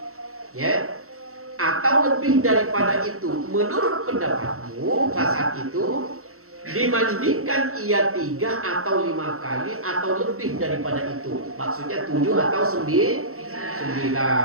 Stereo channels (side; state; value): left; late; 0.63 ms